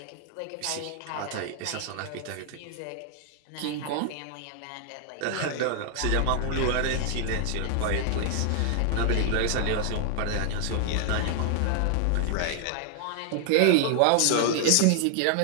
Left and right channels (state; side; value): different; both; correlation 0.00